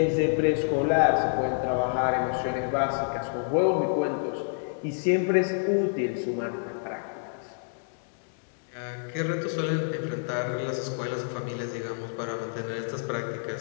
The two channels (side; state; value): right; silent; digital silence